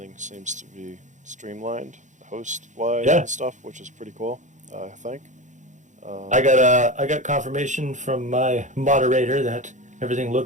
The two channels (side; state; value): left; late; 0.35 ms